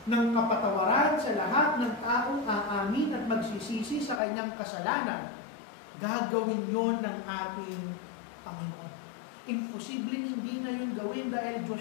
ng kapatawaran sa lahat ng taong aamin at magsisisi sa kanyang kasalanan, gagawin yon ng ating Panginoon. Imposibleng hindi na yun gawin dahil Diyos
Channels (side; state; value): right; drops out; at 4.2 s